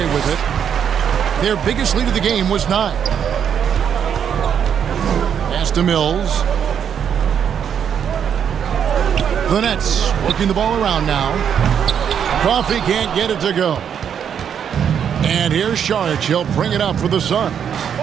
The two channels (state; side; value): quieter; left; 8.2 dB